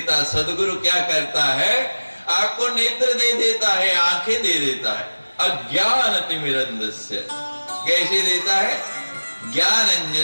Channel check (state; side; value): inverted; both; correlation -1.00